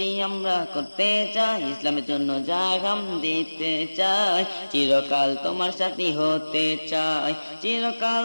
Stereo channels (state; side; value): inverted; both; correlation -1.00